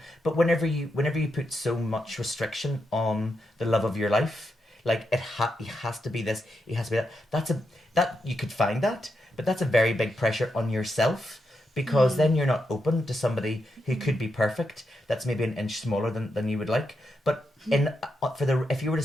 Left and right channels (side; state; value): both; normal; correlation 0.84